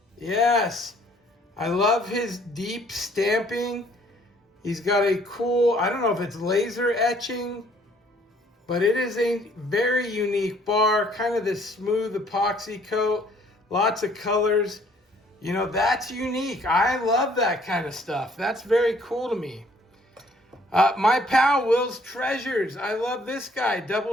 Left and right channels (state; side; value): normal; both; correlation 0.61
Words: Yes, I love his deep stamping. He's got a cool, I don't know if it's laser etching, but it is a very unique bar, kind of this smooth epoxy coat, lots of colors. You know, that's unique. I love that kind of stuff. That's very cool to me. My pal Will's Treasures. I love this guy,